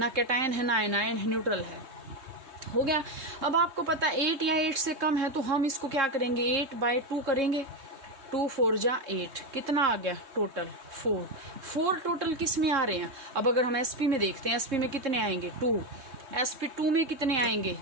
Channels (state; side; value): late; left; 3.7 ms